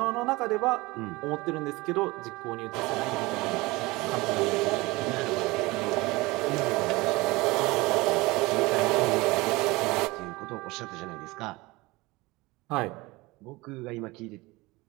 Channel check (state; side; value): quieter; left; 22.2 dB